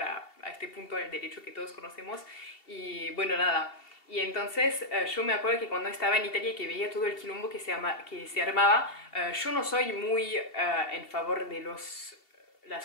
a este punto del derecho que todos conocemos. Y bueno, nada. Y entonces yo me acuerdo que cuando estaba en Italia y que veía todo el quilombo que se armaba, yo no soy muy en favor de las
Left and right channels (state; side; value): late; right; 2.7 ms